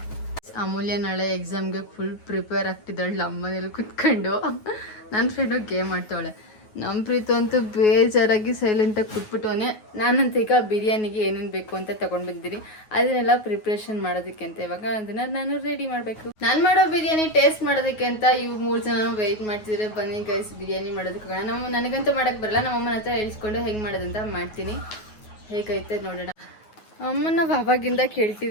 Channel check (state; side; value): late; right; 9.4 ms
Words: ಅಮೂಲ್ಯ ನಾಳೆ ಎಕ್ಸಾಮ್ಗೆ ಫುಲ್ ಪ್ರಿಪೇರ್ ಆಗ್ತಿದ್ದಾಳೆ ನಮ್ಮನೇಲಿ ಕುತ್ಕೊಂಡು. ನನ್ನ ಫ್ರೆಂಡು ಗೇಮ್ ಆಡ್ತಾವಳೆ. ನಮ್ಮ ಪ್ರೀತು ಅಂತೂ ಬೇಜಾರಾಗಿ ಸೈಲೆಂಟಾಗಿ ಕೂತ್ಬಿಟ್ಟವನೆ. ನಾನಂತ ಈಗ ಬಿರಿಯಾನಿಗೆ ಏನೇನು ಬೇಕು ಅಂತ ತಗೊಂಡ್ ಬಂದಿದ್ದೀನಿ. ಅದನ್ನೆಲ್ಲ ಪ್ರಿಪ್ರೇಷನ್ ಮಾಡೋದಕ್ಕೆ ಅಂತ ಇವಾಗ ಅದನ್ನ ನಾನು ರೆಡಿ ಮಾಡಬೇಕು. ನಾನು ಮಾಡೋ ಬಿರಿಯಾನಿ ಟೇಸ್ಟ್ ಮಾಡೋದಕ್ಕೆ ಅಂತ ಇವು 3 ಜನ ವೆಯ್ಟ್ ಮಾಡ್ತಿದ್ರೆ. ಬನ್ನಿ ಗೈಸ್, ಬಿರಿಯಾನಿ ಮಾಡೋದಕ್ಕೆ ನನಗಂತೂ ಮಾಡಕ್ ಬರಲ್ಲ. ನಮ್ಮಮ್ಮನ ಹತ್ರ ಹೇಳ್ಸ್ಕೊಂಡು ಹೆಂಗ್ ಮಾಡೋದಂತ ಮಾಡ್ತೀನಿ. ಹೇಗೈತೆ ನೋಡೋಣ. ಅಮ್ಮನ ಅವಾಗಿಂದ